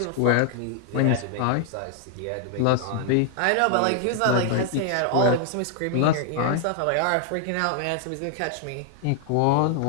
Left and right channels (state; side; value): different; both; correlation -0.01